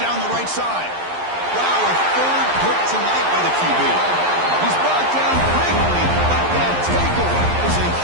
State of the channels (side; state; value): left; late; 11 ms